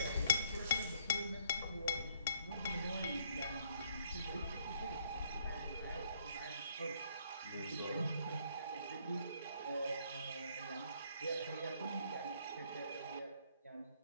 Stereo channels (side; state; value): both; inverted; correlation -0.65